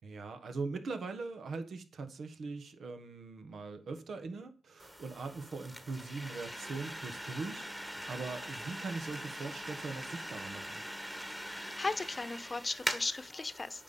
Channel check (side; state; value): both; normal; correlation 0.91